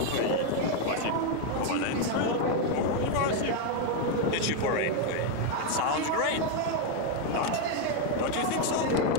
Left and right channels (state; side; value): different; both; correlation 0.01